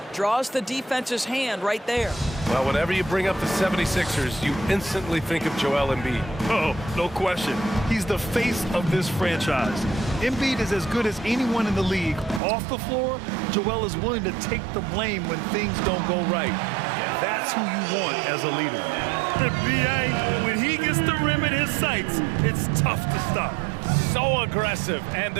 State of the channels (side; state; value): left; drops out; at 12.4 s